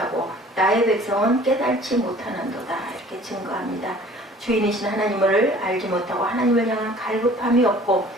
나의 백성은 깨달지 못하는도다. 이렇게 증거합니다. 주인이신 하나님을 알지 못하고 하나님을 향한 갈급함이 없고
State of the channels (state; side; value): normal; both; correlation 0.50